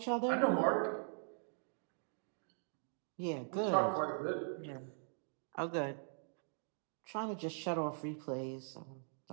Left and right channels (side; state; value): left; silent; digital silence